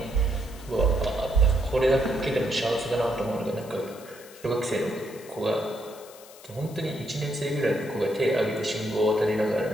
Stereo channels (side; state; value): left; noise; hiss, 20 dB below the sound